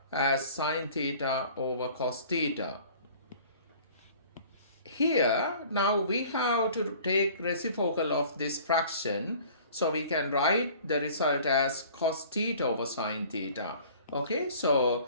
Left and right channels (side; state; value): both; inverted; correlation -0.49